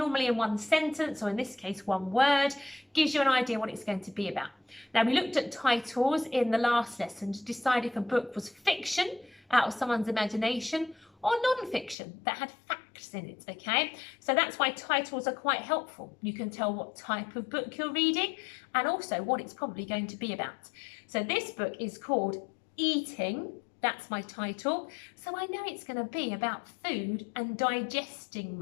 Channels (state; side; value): drops out; right; at 12.0 s